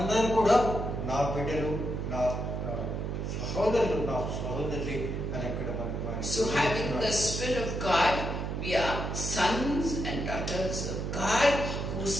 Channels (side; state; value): right; noise; hum, 3 dB below the sound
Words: కూడా నా బిడ్డలు, నా సహోదరులు, నా సహోదరి అని అక్కడ మనకు. So having the Spirit of God, we are sons and daughters of God, whose